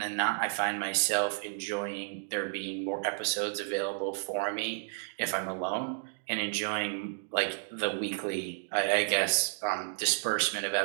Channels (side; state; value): left; silent; digital silence